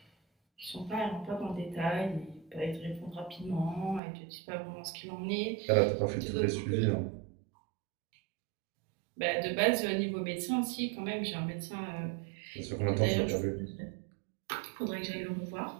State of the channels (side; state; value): left; drops out; at 4.0 s